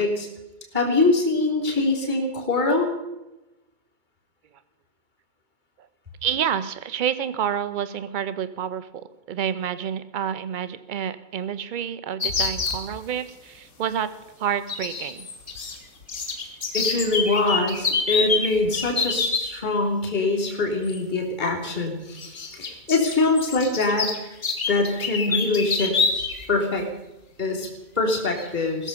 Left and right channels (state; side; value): late; left; 2.2 ms